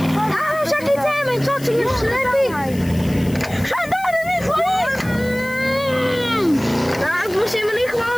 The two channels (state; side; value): noise; left; hiss, 19 dB below the sound